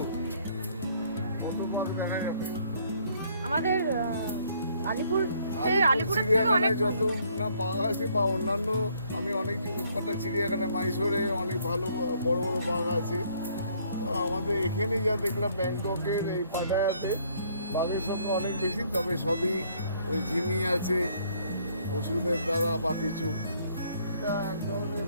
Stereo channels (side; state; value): both; inverted; correlation -0.65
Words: কত বাঘ দেখা যাবে। আমাদের আলিপুর আলিপুরের থেকে চিড়িয়াখানায় অনেক যত না বাঘ আছে বা অন্যান্য, আমি অনেক কটা চিড়িয়াখানায় মাইসোরে অনেক ভালো বড় বড় বাঘ আছে। তো আমাদের এখানে যা দেখলাম ব্যাংককের এই পাটায়াতে বাঘের সংখ্যা অনেক বেশি, তবে সবই ওই ঝিমি আছে ওষুধের দ্বারা বা কিছু। এটা এক ধরনের